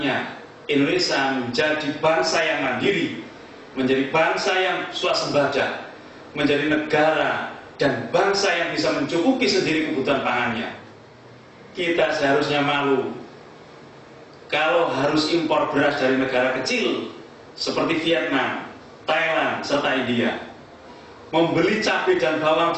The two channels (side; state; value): both; identical; correlation 1.00